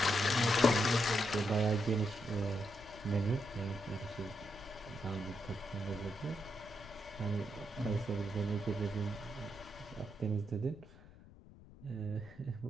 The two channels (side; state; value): left; noise; rumble, 20 dB below the sound